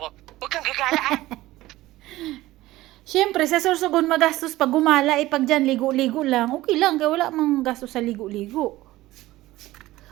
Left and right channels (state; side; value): quieter; left; 17.0 dB